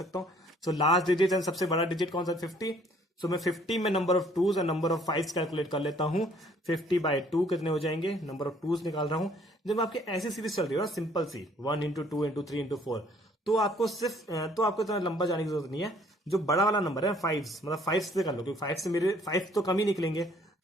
हूं। सो लास्ट डिजिट एंड सबसे बड़ा डिजिट कौन सा, 50। सो मैं 50 में नंबर ऑफ टूज और नंबर ऑफ फाइव्स कैलकुलेट कर लेता हूं। 50/2 कितने हो जाएंगे, नंबर ऑफ टूज निकाल रहा हूं। जब आपकी ऐसी सीरीज चल रही है ना, सिंपल सी 1 इंटू 2 इंटू 3 इंटू 4, तो आपको इतना लंबा जाने की जरूरत नहीं है। जो बड़ा वाला नंबर है 5, मतलब 5 से कर लो, क्योंकि 5 से मेरे 5 तो कम ही निकलेंगे।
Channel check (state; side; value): normal; both; correlation 0.60